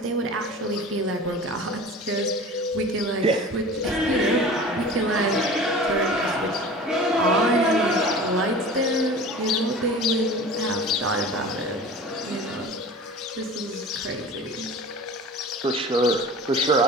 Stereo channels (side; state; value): both; normal; correlation 0.38